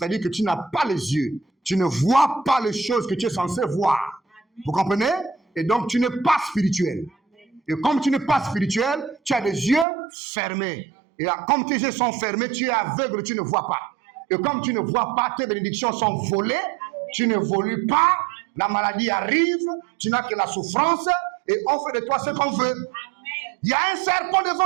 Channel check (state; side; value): drops out; left; at 9.9 s